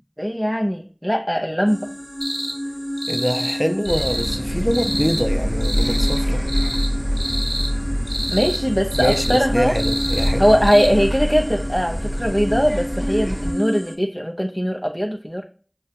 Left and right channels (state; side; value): identical; both; correlation 1.00